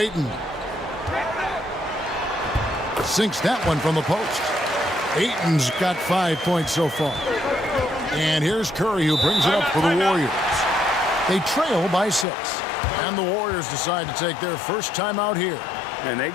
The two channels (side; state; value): right; drops out; at 12.2 s